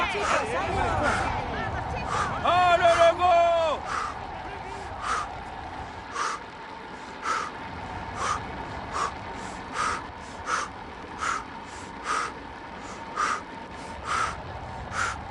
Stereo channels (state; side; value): identical; both; correlation 1.00